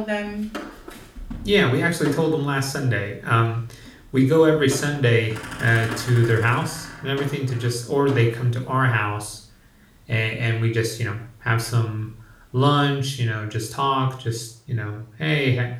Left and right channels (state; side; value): identical; both; correlation 1.00